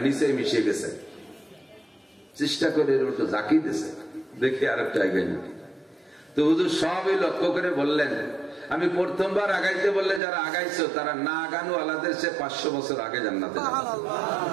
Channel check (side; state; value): left; drops out; at 10.2 s